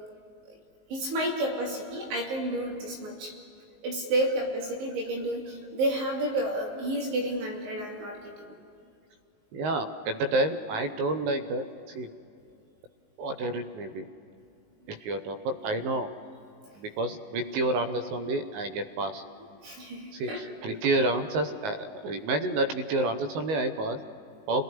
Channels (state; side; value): late; left; 19 ms